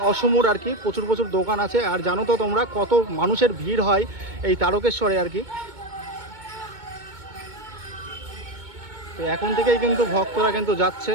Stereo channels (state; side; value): late; left; 2.2 ms